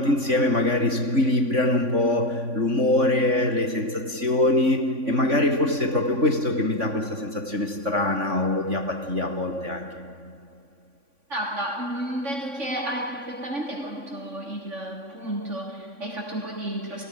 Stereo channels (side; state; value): left; late; 3.5 ms